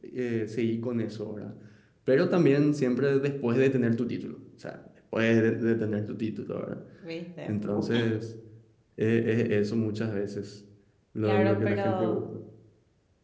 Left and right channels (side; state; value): both; identical; correlation 1.00